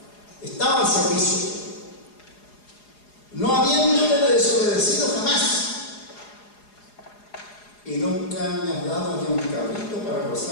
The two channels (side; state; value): right; late; 4.8 ms